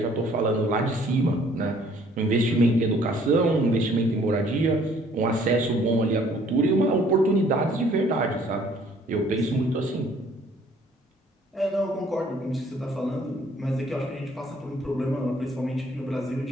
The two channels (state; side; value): normal; both; correlation 0.59